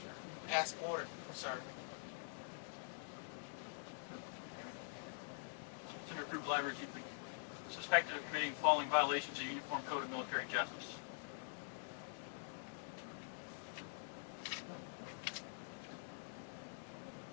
sir. Ask order, sir. Senior Recruit Library Chief, suspected of committing following violations of the Uniform Code of Military Justice.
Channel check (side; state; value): right; silent; digital silence